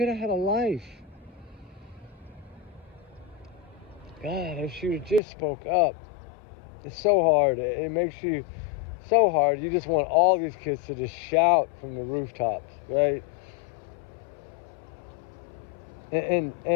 have had a life. God, if she would just spoke up. It's so hard. It makes you so hard. You just want all these kids to just shout from the rooftops, right?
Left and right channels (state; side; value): drops out; right; at 5.2 s